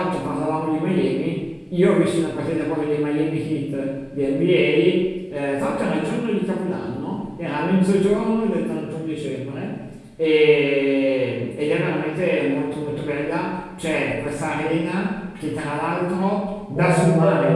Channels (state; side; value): identical; both; correlation 1.00